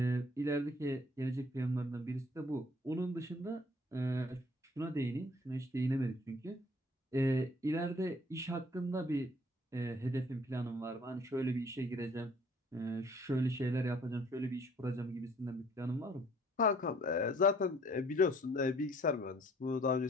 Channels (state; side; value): normal; both; correlation 0.58